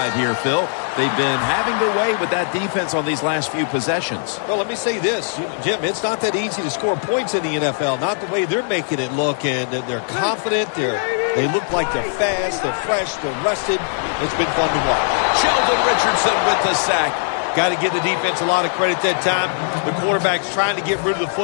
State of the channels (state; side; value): silent; right; digital silence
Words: here, Phil. They've been having their way with that defense on these last few possessions. Well, let me say this, Jim, it's not that easy to score points in the NFL, not the way they're making it look, and they're confident, they look like they're fast, they're fresh, they're rested. It's been fun to watch. Sheldon Richardson with the sack. Got to give the defense a lot of credit that time. The quarterback's trying to get rid of the